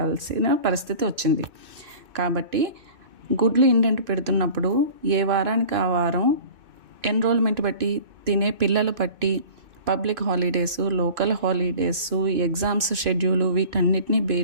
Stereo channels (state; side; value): late; left; 2.7 ms